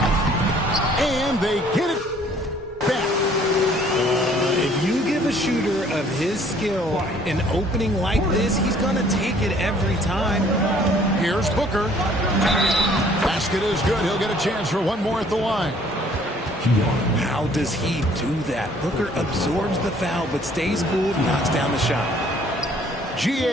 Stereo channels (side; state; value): both; normal; correlation 0.58